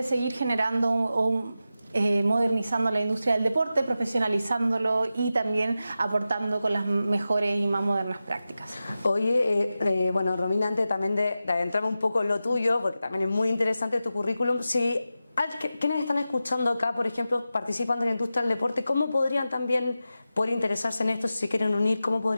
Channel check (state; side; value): inverted; both; correlation -0.92